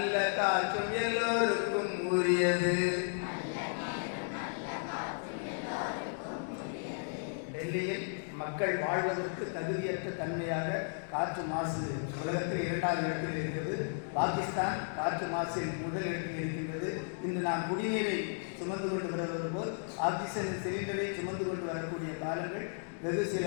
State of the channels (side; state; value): right; silent; digital silence